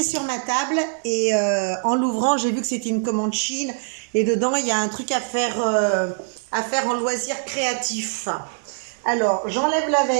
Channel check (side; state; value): left; silent; digital silence